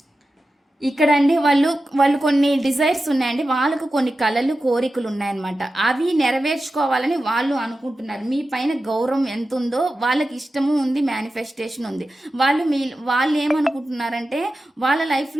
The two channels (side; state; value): both; normal; correlation 0.93